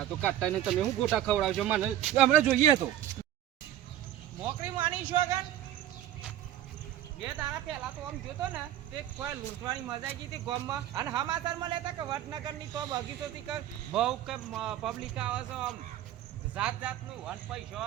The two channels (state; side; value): quieter; left; 12.1 dB